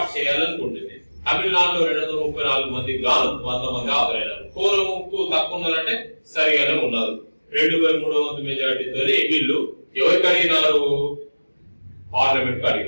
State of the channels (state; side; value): inverted; both; correlation -1.00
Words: చేయాలనుకుంటుంది. తమిళనాడులో 234 మందికి గాను 100 మంది హాజరైనారు. కోరంకు తక్కువ ఉన్నారంటే సరిగానే ఉన్నారు. 2/3 వంతు మెజార్టీతో వీళ్ళు ఎవరికి అడిగినారు? పార్లమెంట్